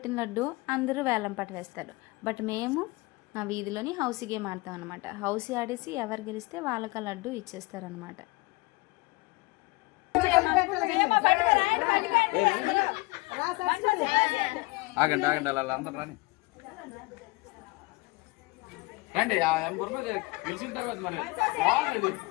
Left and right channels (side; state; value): right; quieter; 23.8 dB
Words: లడ్డు అందరూ వేలం పాట వేస్తారు. బట్ మేము మా వీధిలోని హౌసీ గేమ్ ఆడతాం అనమాట. హౌసీ ఆడేసి ఎవరు గెలిస్తే వాళ్ళకి ఆ లడ్డు ఇచ్చేస్తారనమాట. ఆగండి ఆగండి అలా అందరూ రాని రండి. గెలిచిన తర్వాత మరి